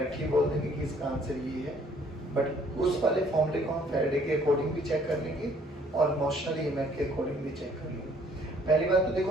बोल देंगे कि इसका आंसर ये है, बट उस वाले फॉर्मूले को हम फैराडे के अकॉर्डिंग भी चेक कर लेंगे और मोशनल ईएमएफ के अकॉर्डिंग भी चेक कर लेंगे। पहली बात तो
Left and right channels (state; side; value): normal; both; correlation 0.60